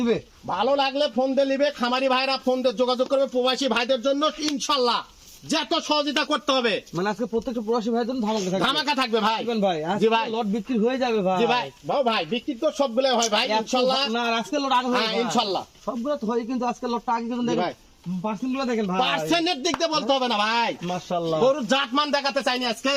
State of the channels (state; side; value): identical; both; correlation 1.00